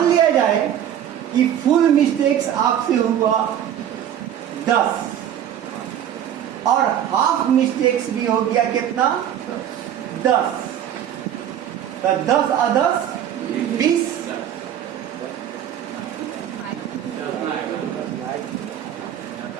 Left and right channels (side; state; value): left; quieter; 10.3 dB